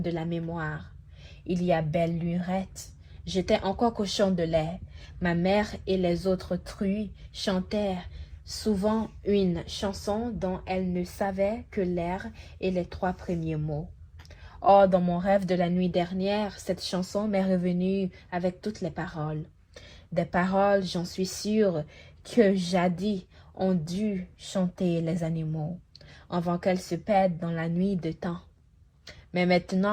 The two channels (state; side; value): identical; both; correlation 1.00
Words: de la mémoire. Il y a belle lurette, j'étais encore cochon de lait. Ma mère et les autres truies chantèrent souvent une chanson dont elles ne savaient que l'air et les 3 premiers mots. Or, dans mon rêve de la nuit dernière, cette chanson m'est revenue avec toutes les paroles. Des paroles, j'en suis sûre, que jadis ont dû chanter les animaux, avant qu'elles se perdent dans la nuit de temps. Mais